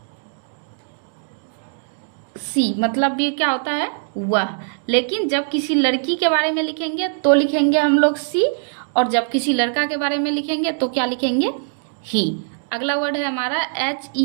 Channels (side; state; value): left; silent; digital silence